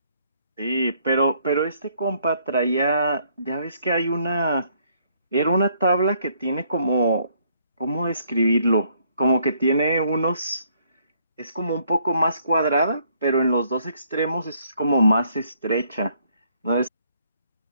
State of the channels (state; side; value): inverted; both; correlation -0.67